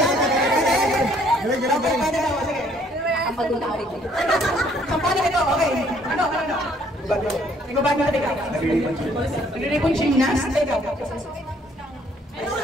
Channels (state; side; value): normal; both; correlation 0.63